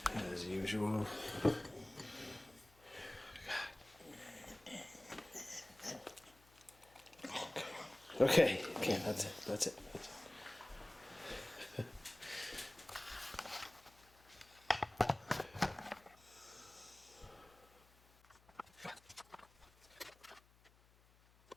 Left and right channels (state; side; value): noise; left; hum, 27 dB below the sound